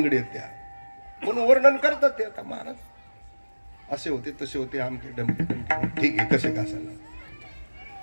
आहेत त्या. म्हणून वर्णन करतात ते. आता महाराज असे होते, तसे होते, आमके डमके डमके, ठीक आहे, कसे का असायला.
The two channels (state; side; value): inverted; both; correlation -1.00